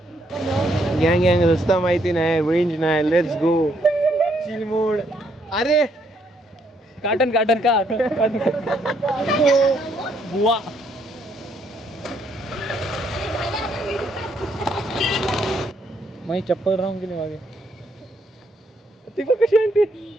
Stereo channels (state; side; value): normal; both; correlation 0.71